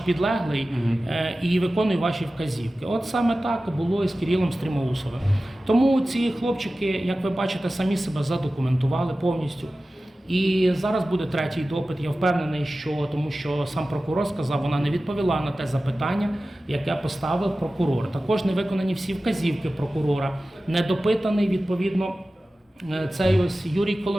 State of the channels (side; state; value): both; normal; correlation 0.95